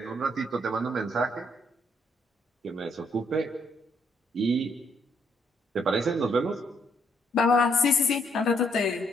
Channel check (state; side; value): normal; both; correlation 0.70